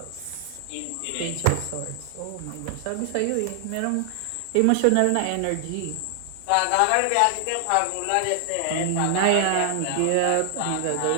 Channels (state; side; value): different; both; correlation 0.00